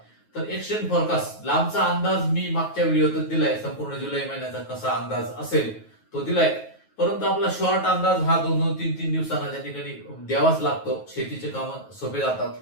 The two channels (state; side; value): late; right; 9.3 ms